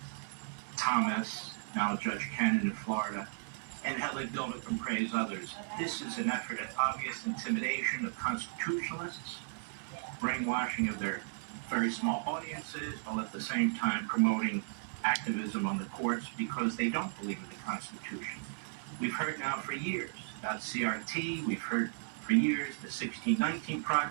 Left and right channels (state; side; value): silent; left; 54 dB below the other